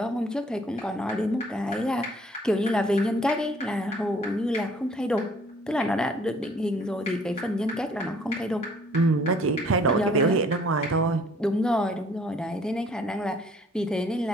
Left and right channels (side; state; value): both; normal; correlation 0.58